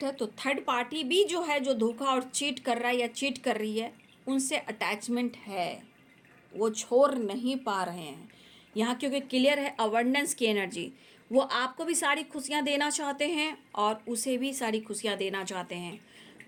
है, तो थर्ड पार्टी भी जो है, जो धोखा और चीट कर रहा है या चीट कर रही है, उनसे अटैचमेंट है, वो छोड़ नहीं पा रहे हैं यहाँ, क्योंकि क्लियर है अबंडेंस की एनर्जी। वो आपको भी सारी खुशियाँ देना चाहते हैं और उसे भी सारी खुशियाँ देना चाहते हैं।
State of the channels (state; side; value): identical; both; correlation 1.00